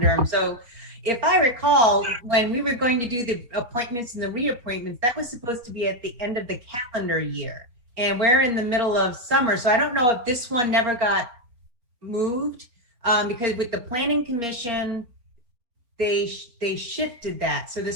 them. So if I recall, when we were going to do the appointments and the reappointments, that was supposed to be at the end of the calendar year. And we're in the middle of summer. So I don't know if this one never got moved, because with the planning commission, they shifted that. So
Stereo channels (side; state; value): left; late; 4.3 ms